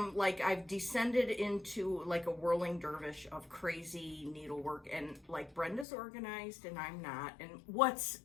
like, I've descended into like a whirling dervish of crazy needlework. And like Brenda's organized and I'm not. And what's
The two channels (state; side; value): drops out; right; at 5.9 s